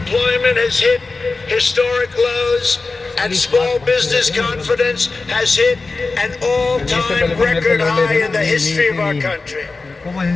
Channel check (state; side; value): quieter; right; 3.8 dB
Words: has hit historic lows and small business confidence has hit an all-time record high in the history of our country.